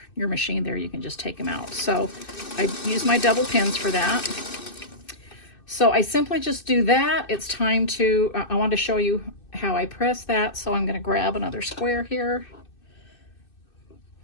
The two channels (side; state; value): right; late; 2.6 ms